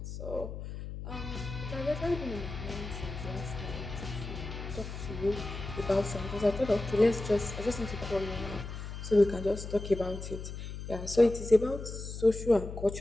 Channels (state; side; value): noise; left; hum, 8 dB below the sound